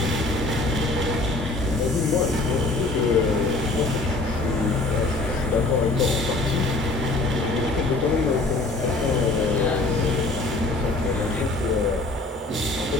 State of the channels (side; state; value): right; quieter; 3.2 dB